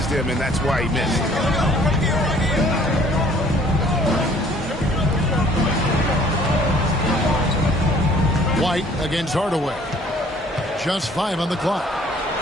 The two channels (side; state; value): both; normal; correlation 0.56